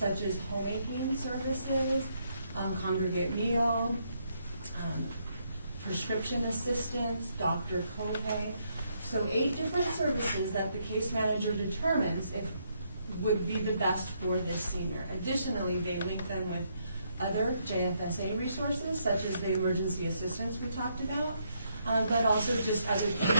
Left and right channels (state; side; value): inverted; both; correlation -0.75